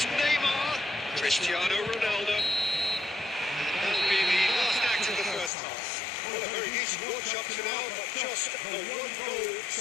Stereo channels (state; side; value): drops out; right; at 5.5 s